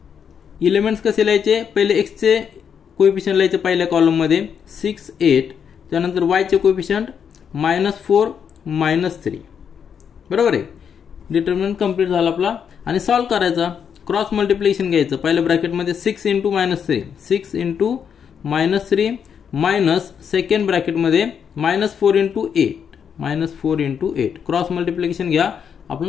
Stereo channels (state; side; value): quieter; right; 7.5 dB